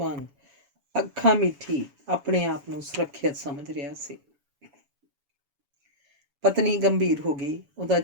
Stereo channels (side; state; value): left; late; 7.1 ms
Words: ਅੱਖਾਂ ਮੀਠੀ ਆਪਣੇ ਆਪ ਨੂੰ ਸੁਰੱਖਿਅਤ ਸਮਝ ਰਿਹਾ ਸੀ। ਪਤਨੀ ਗੰਭੀਰ ਹੋ ਗਈ। ਉਹਦਾ